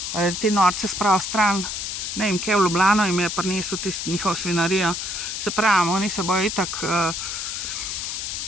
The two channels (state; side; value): noise; left; hiss, 4 dB below the sound